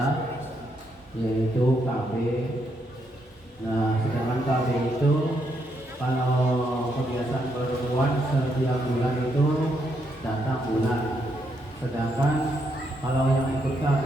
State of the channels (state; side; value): normal; both; correlation 0.77